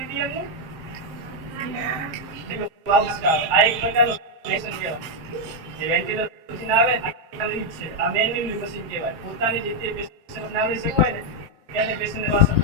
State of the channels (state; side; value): late; left; 7.6 ms